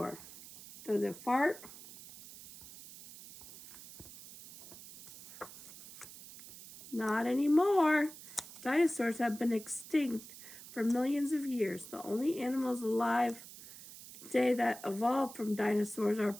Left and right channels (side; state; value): right; noise; hiss, 16 dB below the sound